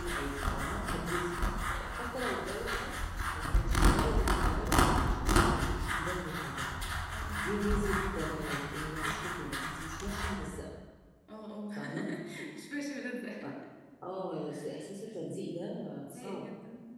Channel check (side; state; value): both; identical; correlation 1.00